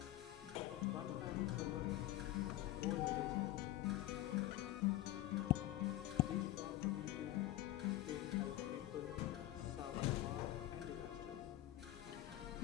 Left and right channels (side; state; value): right; quieter; 15.3 dB